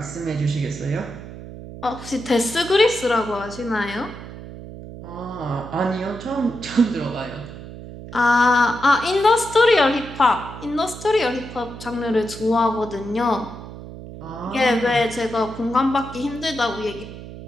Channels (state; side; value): noise; right; hum, 13 dB below the sound